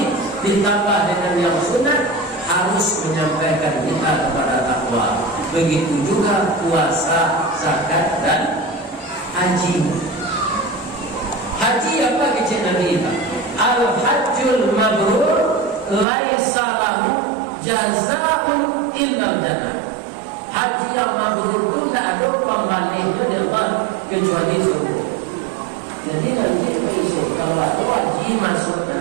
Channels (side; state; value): left; drops out; at 16.1 s